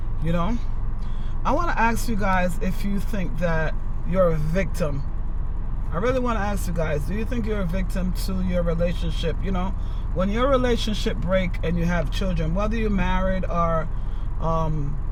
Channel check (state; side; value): identical; both; correlation 1.00